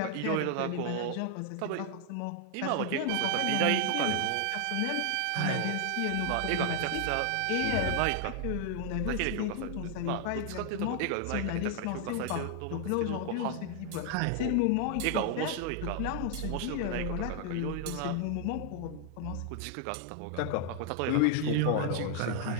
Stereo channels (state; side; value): different; both; correlation 0.00